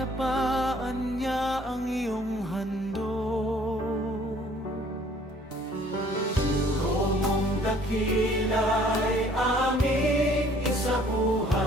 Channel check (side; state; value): both; normal; correlation 0.57